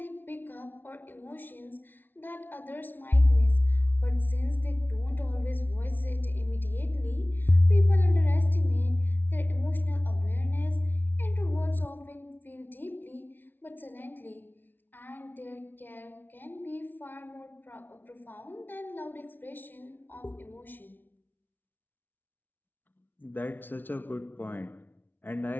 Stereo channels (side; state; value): right; late; 0.091 ms